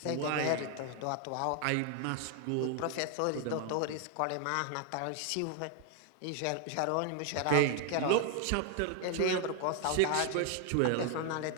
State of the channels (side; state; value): both; different; correlation 0.01